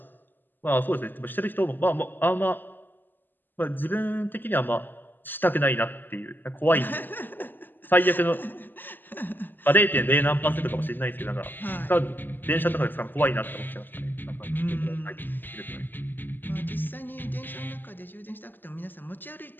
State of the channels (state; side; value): late; right; 0.091 ms